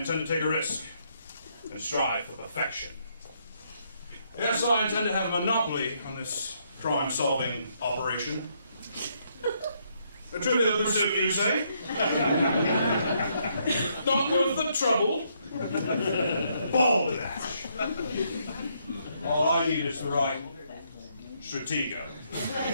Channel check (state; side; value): inverted; both; correlation -0.73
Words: to take a risk and strive for perfection. Yes, I intend to have a monopoly on this crime-solving operation. A trivial pursuit, you say? Not worth the trouble. Balderdash. All I need is the right stratego.